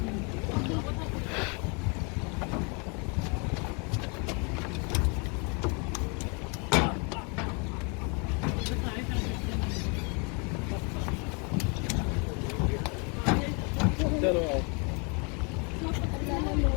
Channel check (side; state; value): right; quieter; 33.9 dB